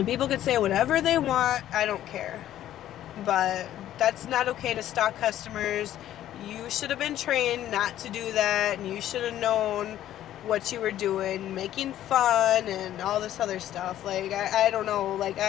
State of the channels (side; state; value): right; quieter; 12.4 dB